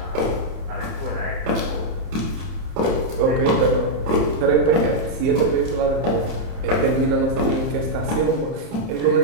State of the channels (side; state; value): left; late; 31 ms